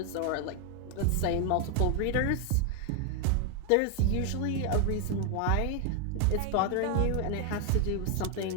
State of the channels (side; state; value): both; different; correlation 0.01